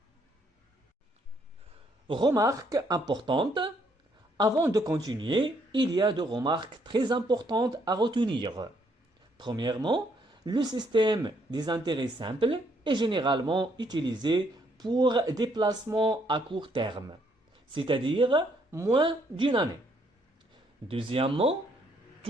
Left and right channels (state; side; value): normal; both; correlation 0.70